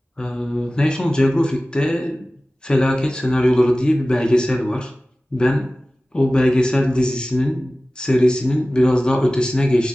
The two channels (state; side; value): normal; both; correlation 0.97